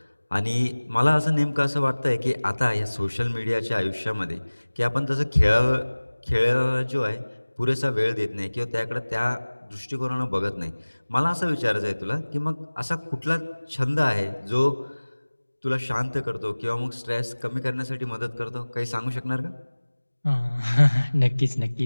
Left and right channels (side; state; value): both; inverted; correlation -1.00